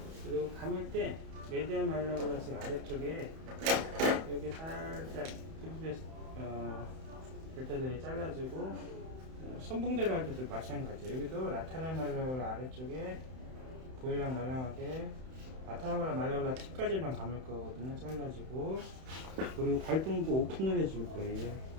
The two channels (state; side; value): late; left; 31 ms